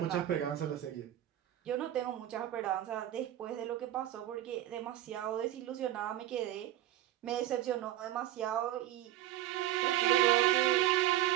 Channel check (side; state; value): left; quieter; 13.3 dB